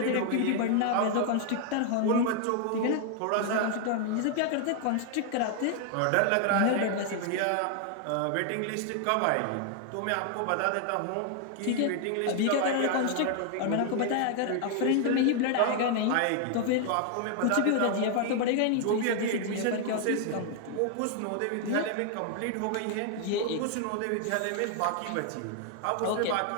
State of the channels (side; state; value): both; different; correlation 0.00